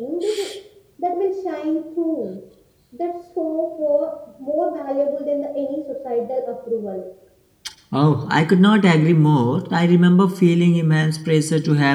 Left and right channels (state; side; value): identical; both; correlation 1.00